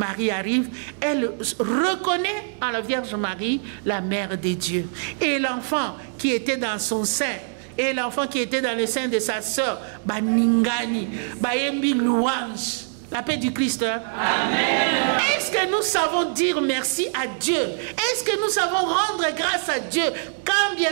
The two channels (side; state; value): left; silent; digital silence